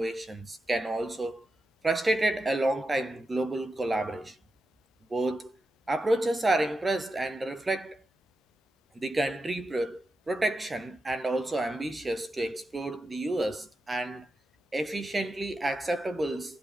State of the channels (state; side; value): normal; both; correlation 0.89